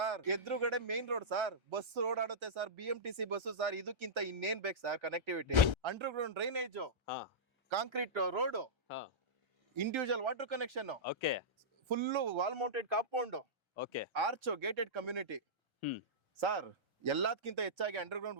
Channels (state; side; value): late; left; 1.3 ms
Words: ಎದುರುಗಡೆ ಮೇನ್ ರೋಡ್ ಸರ್. ಬಸ್ ಓಡಾಡುತ್ತೆ ಸರ್. BMTC bus sir. ಇದಕ್ಕಿಂತ ಇನ್ನೇನ್ ಬೇಕು ಸರ್ ಕನೆಕ್ಟಿವಿಟಿ? ಅಂಡರ್ಗ್ರೌಂಡ್ ಡ್ರೈನೇಜ್, ಹಾ ಕಾಂಕ್ರೀಟ್ ರೋಡ್, ಹಾ individual water connection, okay full wall mounted compound, okay arch, gated community hmm sir. ಎಲ್ಲದಕ್ಕಿಂತ ಹೆಚ್ಚಾಗಿ underground